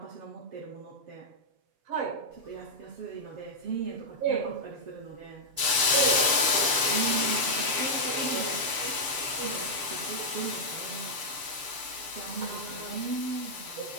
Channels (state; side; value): late; left; 6.9 ms